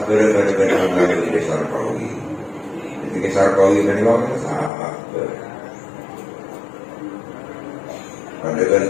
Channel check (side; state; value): right; drops out; at 4.7 s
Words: pada mengambil di Sarkawi. Di Sarkawi kan itu sangat. Pada kan